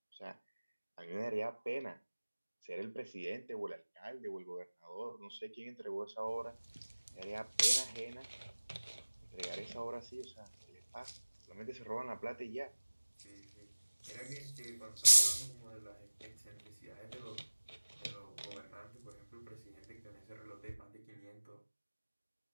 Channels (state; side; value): inverted; both; correlation -1.00